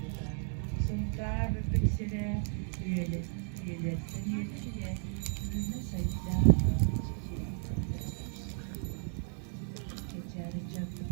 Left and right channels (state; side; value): silent; left; 55 dB below the other